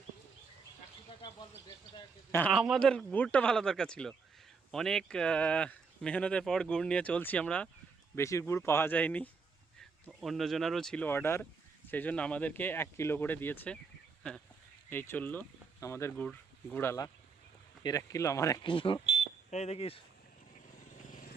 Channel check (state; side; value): quieter; left; 5.0 dB